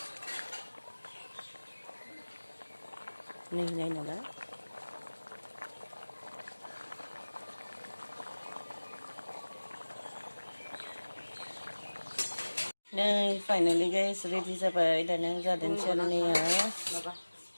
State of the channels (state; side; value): inverted; both; correlation -1.00